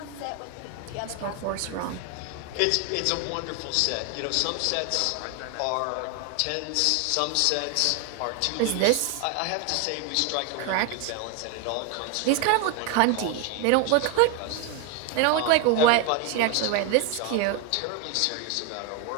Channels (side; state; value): both; different; correlation 0.01